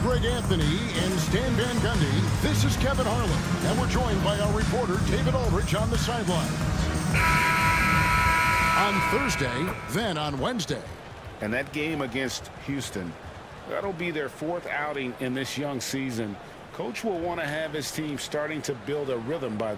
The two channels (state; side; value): identical; both; correlation 1.00